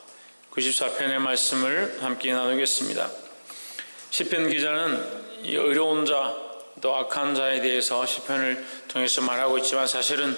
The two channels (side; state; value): both; inverted; correlation -1.00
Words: 94편의 말씀을 함께 나누겠습니다. 시편 기자는 이 어려운 자, 또 악한 자에 대해서 시편을 통해서 말하고 있지만 사실은